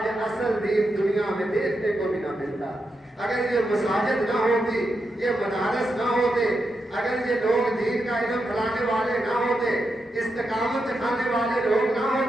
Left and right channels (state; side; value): normal; both; correlation 0.86